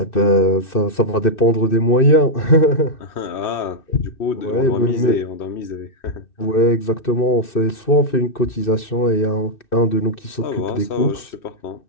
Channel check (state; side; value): late; right; 2.6 ms